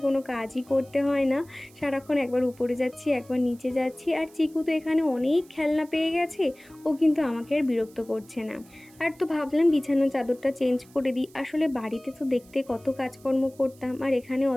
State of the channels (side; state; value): right; noise; hiss, 27 dB below the sound